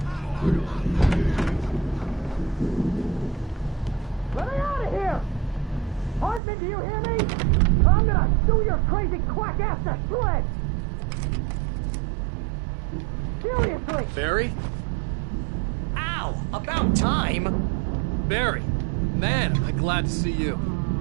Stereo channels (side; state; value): left; drops out; at 6.4 s